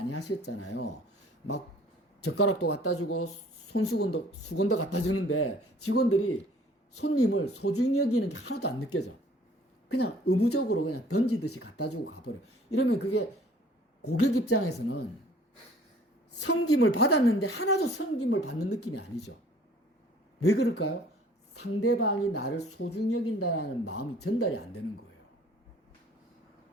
하셨잖아요. 막 젓가락도 갖다 주고 수건도 갖다 주는데 직원들이 손님을 소중히 여기는 게 하나도 안 느껴져. 그냥 의무적으로 그냥 던지듯이 갖다 주고 가버려. 이러면 그게 고객 입장에서는 섬김을 받았는데 하나도 섬김을 받는 느낌이 아니죠. 왜 그럴까요? 상대방이 나를 소중히 여긴다는 마음이 전달이 안 되는 거예요.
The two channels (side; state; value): both; normal; correlation 0.54